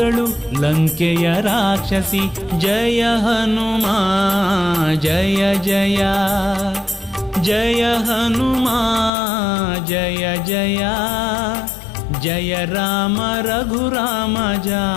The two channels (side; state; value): right; drops out; at 9.1 s